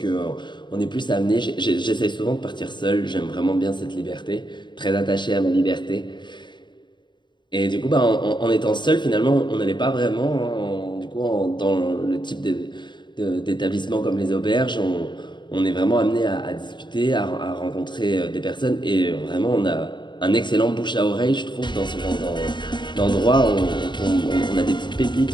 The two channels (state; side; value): late; right; 0.22 ms